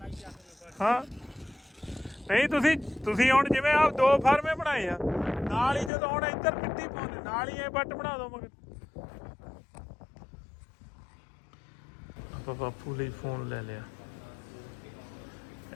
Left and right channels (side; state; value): right; drops out; at 5.9 s